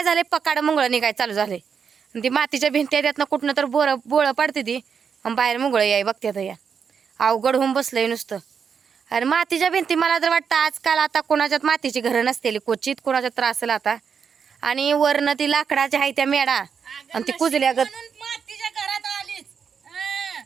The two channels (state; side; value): quieter; left; 6.6 dB